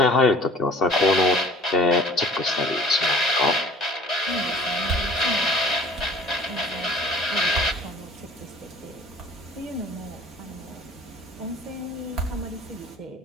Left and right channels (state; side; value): normal; both; correlation 0.49